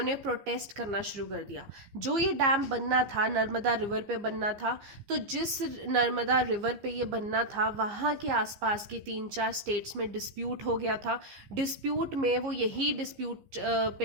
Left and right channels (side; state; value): left; late; 15 ms